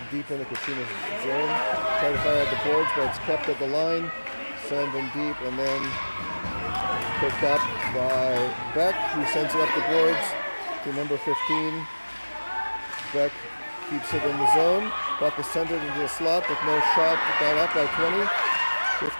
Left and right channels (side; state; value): both; inverted; correlation -1.00